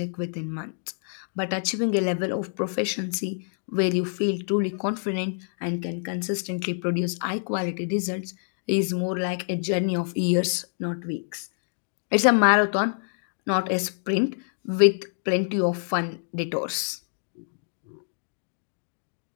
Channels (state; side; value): silent; right; digital silence